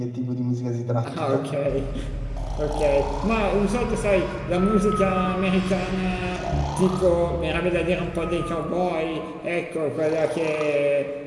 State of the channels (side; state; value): both; identical; correlation 1.00